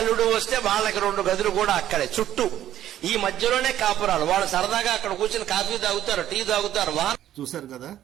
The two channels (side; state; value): left; quieter; 12.0 dB